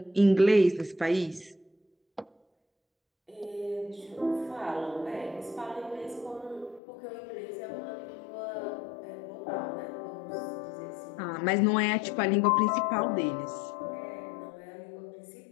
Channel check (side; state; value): right; drops out; at 6.8 s